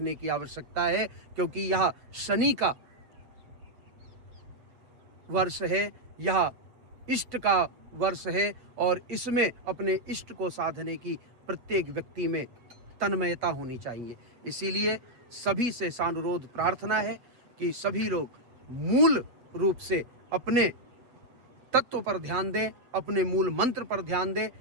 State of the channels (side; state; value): left; late; 7.9 ms